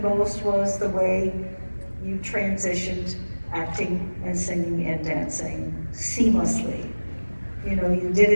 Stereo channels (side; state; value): both; inverted; correlation -1.00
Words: most was the way you transitioned acting and singing and dancing seamlessly. You know, you did